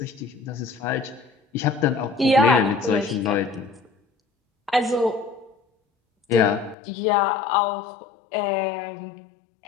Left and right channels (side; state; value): right; drops out; at 6.8 s